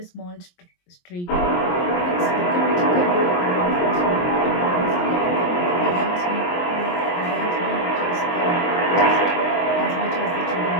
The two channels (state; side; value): late; right; 22 ms